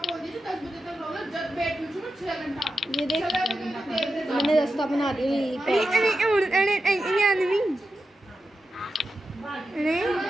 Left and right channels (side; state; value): both; normal; correlation 0.90